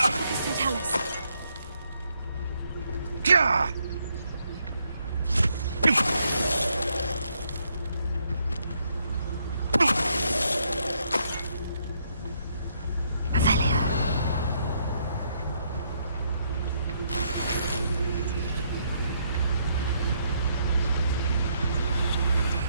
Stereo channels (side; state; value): both; inverted; correlation -0.74